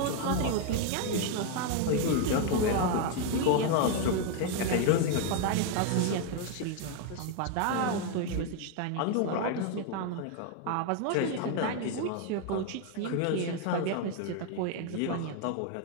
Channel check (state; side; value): different; both; correlation 0.01